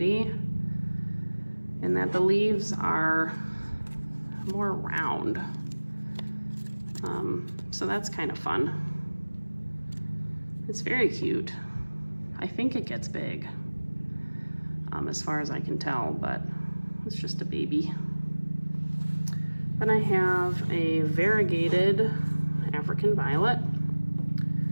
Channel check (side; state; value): both; inverted; correlation -1.00